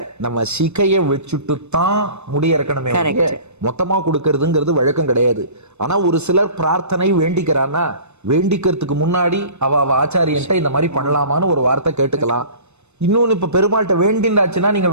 நம்ம சிகைய வச்சுட்டு தான் முடி இறக்கணுமே, மொத்தமா கொடுக்கறதுங்கிறது வழக்கம் கிடையாது. ஆனா ஒரு சிலர் பிரார்த்தனை வேண்டிக்கிறான்னா வேண்டிக்கிறதுக்கு முன்னாடி அவ ஆச்சாரியன்ட்ட இந்த மாதிரி பண்ணலாமான்னு ஒரு வார்த்தை கேட்டுக்கலாம். இன்னொன்னு இப்ப பெருமாள்கிட்ட வேண்டிண்டாச்சுன்னா நீங்க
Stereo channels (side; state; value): left; late; 0.81 ms